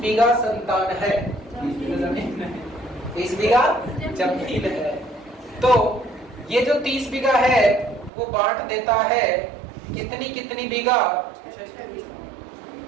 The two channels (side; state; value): left; drops out; at 8.1 s